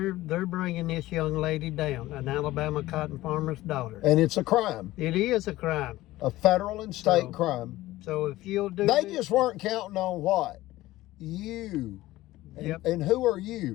bringing this young lady down, an Alabama cotton farmer's daughter. And it's a crime. It is a crime. A federal and state So- crime. So if you'll do They this- just weren't counting on what? You. And, Yep. and who are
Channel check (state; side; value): quieter; right; 16.9 dB